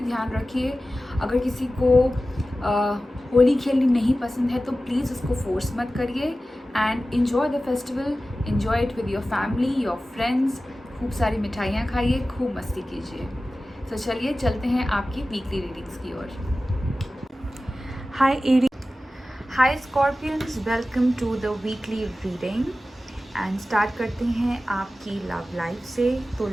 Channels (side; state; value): both; normal; correlation 0.95